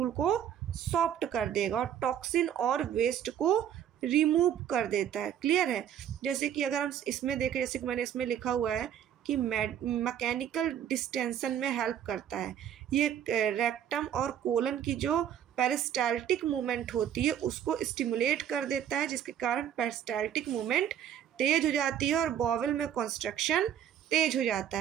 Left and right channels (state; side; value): quieter; left; 9.7 dB